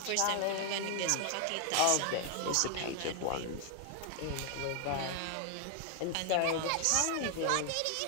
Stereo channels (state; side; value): different; both; correlation 0.00